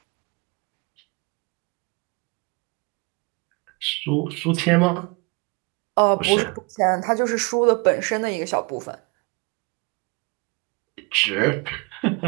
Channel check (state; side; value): quieter; left; 29.4 dB